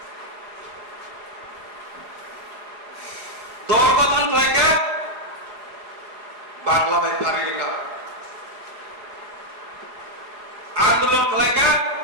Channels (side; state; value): left; late; 4.7 ms